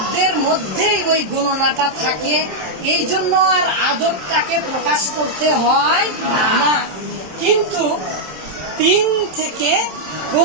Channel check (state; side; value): late; left; 27 ms